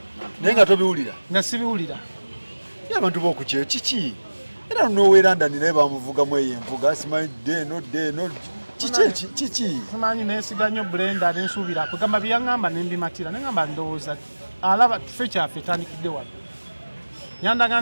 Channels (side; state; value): both; inverted; correlation -1.00